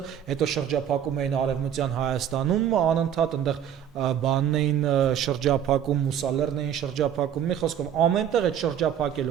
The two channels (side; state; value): left; quieter; 9.5 dB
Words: հետո շրջափակում էին Արևմտյան Հայաստանում, անընդհատ այնտեղ բանն էին շրջափակում, Մուսալերն էին շրջափակում, մի խոսքով ամենտեղ այդ